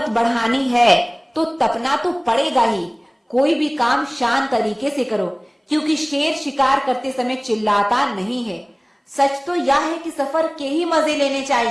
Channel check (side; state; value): both; identical; correlation 1.00